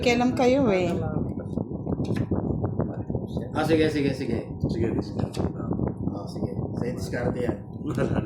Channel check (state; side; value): identical; both; correlation 1.00